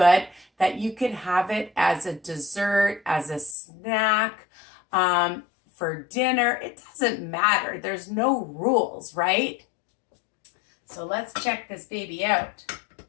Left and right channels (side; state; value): right; drops out; at 3.6 s